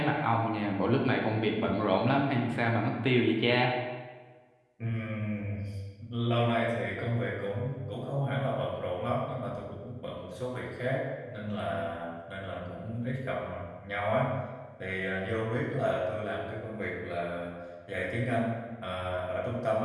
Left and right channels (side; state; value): both; identical; correlation 1.00